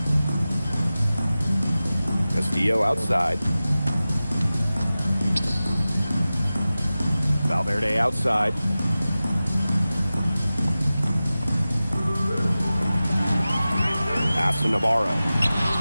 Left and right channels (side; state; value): both; inverted; correlation -0.96